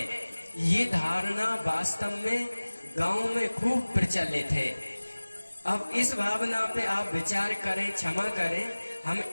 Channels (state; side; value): inverted; both; correlation -1.00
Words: ये धारणा वास्तव में गांव में खूब प्रचलित है। अब इस भावना पे आप विचार करें, क्षमा करें, हम